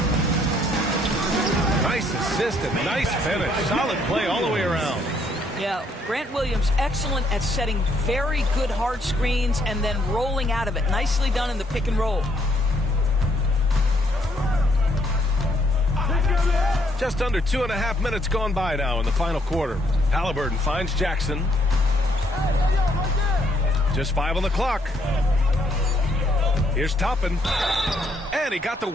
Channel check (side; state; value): both; normal; correlation 0.70